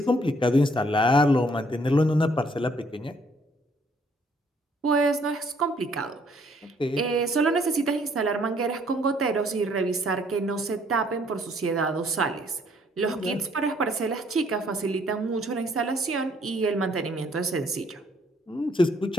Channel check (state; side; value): normal; both; correlation 0.65